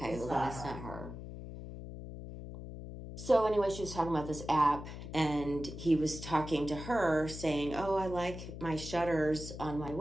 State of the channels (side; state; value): left; noise; hum, 10 dB below the sound